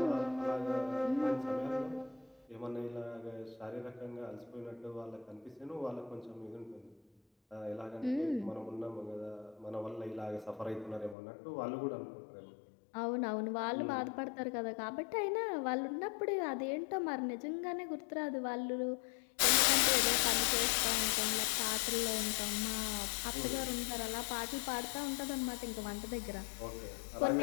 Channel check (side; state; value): right; drops out; at 11.2 s